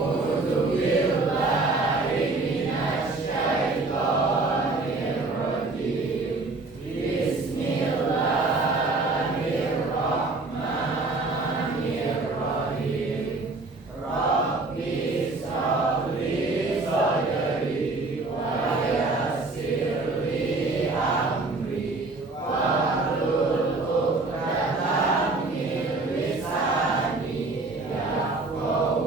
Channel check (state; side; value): quieter; left; 3.4 dB